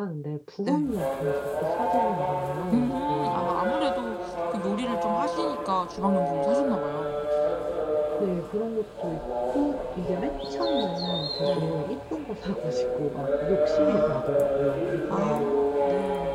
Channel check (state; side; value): identical; both; correlation 1.00